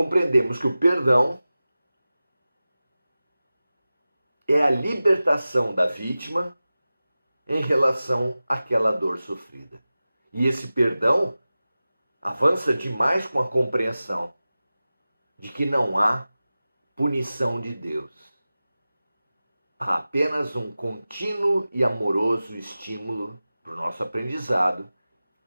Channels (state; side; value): inverted; both; correlation -0.96